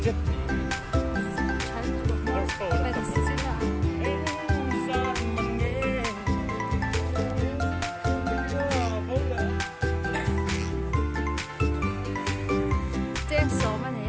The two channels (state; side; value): identical; both; correlation 1.00